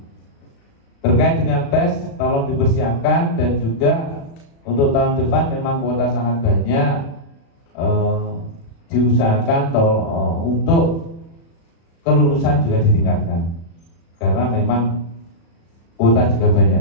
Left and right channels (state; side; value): late; right; 36 ms